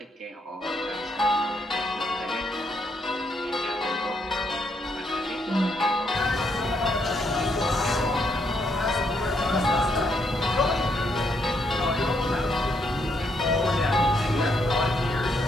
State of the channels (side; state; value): both; normal; correlation 0.75